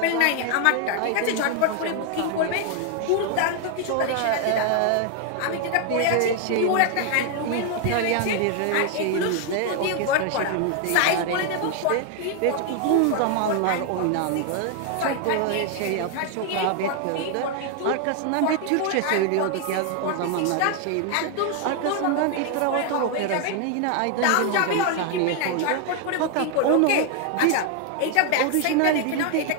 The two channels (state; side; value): different; both; correlation 0.00